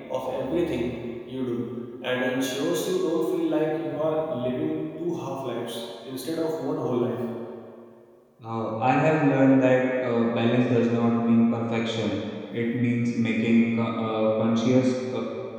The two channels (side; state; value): both; identical; correlation 1.00